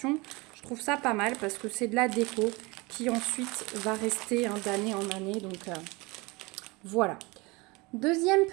je trouve ça pas mal parce que c'est de la déco qui ensuite va rester d'année en année. Donc voilà. Deuxième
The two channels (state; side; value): quieter; left; 25.0 dB